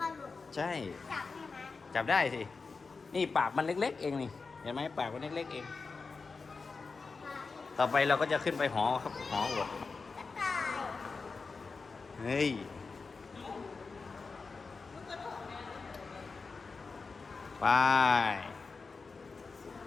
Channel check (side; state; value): right; quieter; 4.5 dB